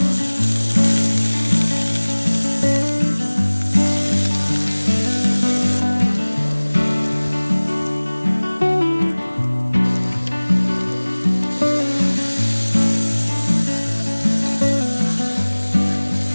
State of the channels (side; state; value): both; inverted; correlation -1.00